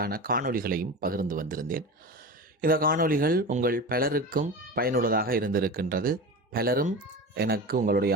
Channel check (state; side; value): normal; both; correlation 0.28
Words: காணொளிகளையும் பகிர்ந்து வந்திருந்தேன். இந்த காணொளிகள் உங்கள் பலருக்கும் பயனுள்ளதாக இருந்திருக்கின்றது. பலரும் எனக்கு உங்களுடைய